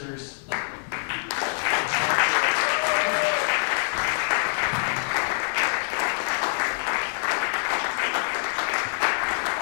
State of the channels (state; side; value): silent; right; digital silence